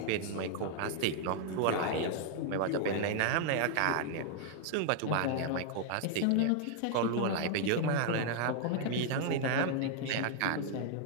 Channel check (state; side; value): different; both; correlation 0.00